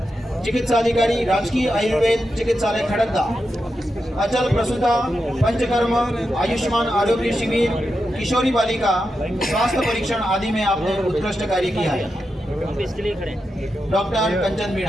चिकित्साधिकारी राजकीय आयुर्वेद चिकित्सालय खड़गदा, अचल प्रसूता पंचकर्म आयुष्मान आरोग्य शिविर किशोरी बालिका स्वास्थ्य परीक्षण आदि में आपने उत्कृष्ट कार्य किया है। हम इसके लिए खड़े हैं। डॉक्टर कंचन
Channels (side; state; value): both; normal; correlation 0.88